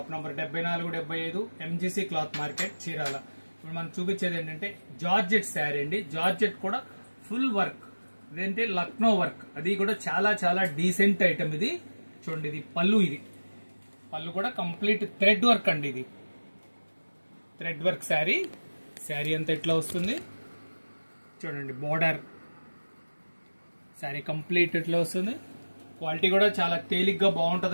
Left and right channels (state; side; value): inverted; both; correlation -1.00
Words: number 7475 MGC cloth market, Chirala. ఇప్పుడు మనం చూపించేది ఏంటంటే జార్జెట్ శారీ అండి. జార్జెట్ కూడా ఫుల్ వర్క్, ఇదేంటే లక్నో వర్క్, అది కూడా చాలా చాలా డీసెంట్ ఐటమ్. ఇది చూడండి, ఇది పళ్ళు. ఇది పళ్ళు కూడా కంప్లీట్ థ్రెడ్ వర్క్ అండి. ఇది థ్రెడ్ వర్క్ శారీ. శారీ అంతా ఇట్లా వస్తుంది చూడండి. బోర్డర్ శారీ కంప్లీట్ ఇట్లా వస్తుంది. క్వాలిటీ కూడా చాలా తేలిగ్గా